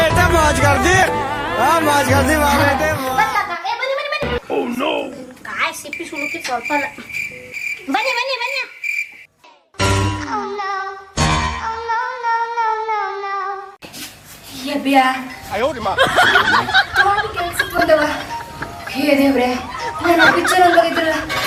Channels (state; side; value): identical; both; correlation 1.00